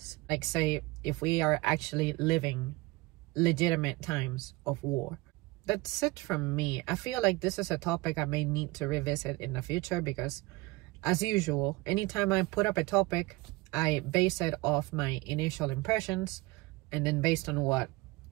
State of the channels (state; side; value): quieter; left; 21.5 dB